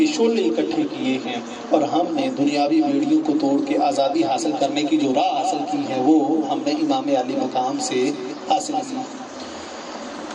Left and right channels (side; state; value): both; identical; correlation 1.00